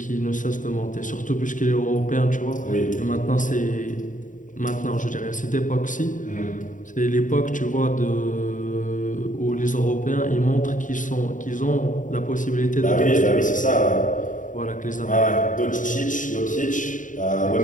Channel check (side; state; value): right; late; 0.38 ms